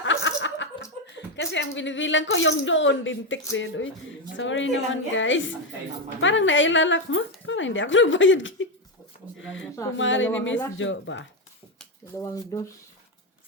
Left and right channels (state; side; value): normal; both; correlation 0.09